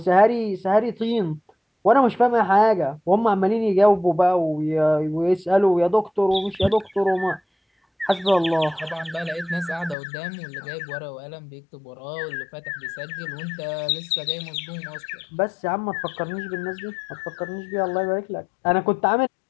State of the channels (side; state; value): right; drops out; at 10.0 s